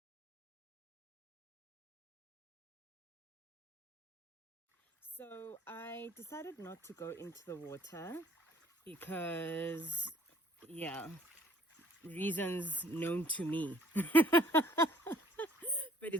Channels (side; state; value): both; normal; correlation 0.58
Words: So I decided not to go into the water because, yeah, reasons known to me. But